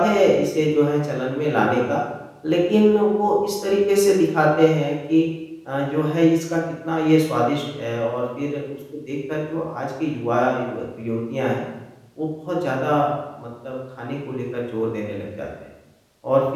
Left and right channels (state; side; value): identical; both; correlation 1.00